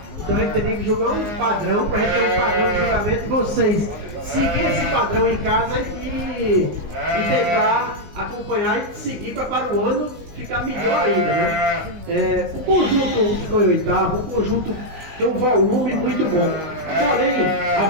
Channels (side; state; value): left; late; 19 ms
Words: Então a gente teria que jogar um padrão para a gente ter um padrão de julgamento e vocês seguir esse padrão em casa e tentar acompanhar e seguir para o ano ficar melhor ainda, né? O conjunto ficou em oitavo, o conjunto tem um volume muito bom. Porém, a